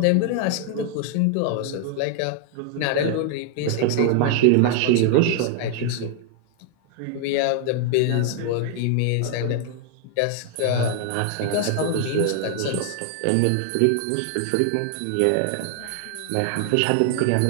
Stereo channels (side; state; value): both; different; correlation 0.00